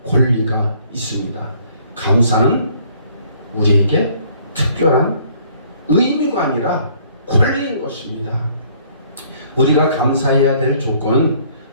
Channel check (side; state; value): both; inverted; correlation -0.61